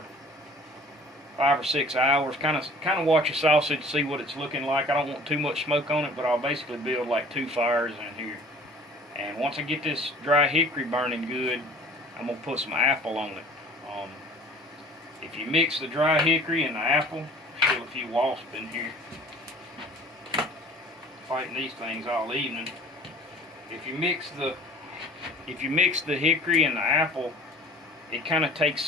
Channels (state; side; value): normal; both; correlation 0.48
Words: 5 or 6 hours. Kind of watch the sausage, see what it's looking like. I don't want too much smoke on it, but I'll basically build like 2 fires in here. And once I get this dry hickory burning good, I'm gonna put some apple on it. If you mix the dry hickory and the apple, still a few wasps in here fighting these things all evening. If you mix the hickory and the apple, it kind of takes